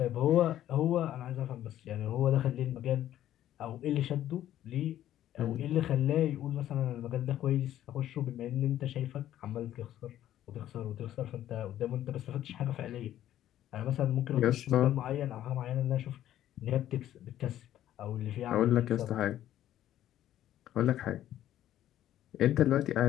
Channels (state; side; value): quieter; right; 12.3 dB